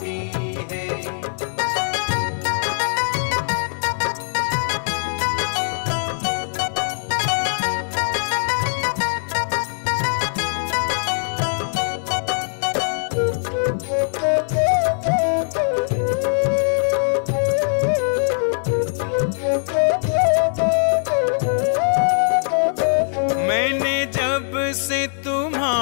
है। मैंने जब से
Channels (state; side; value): silent; right; digital silence